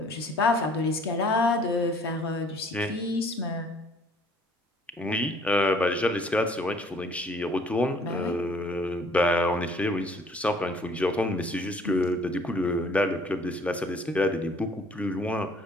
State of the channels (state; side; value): normal; both; correlation 0.57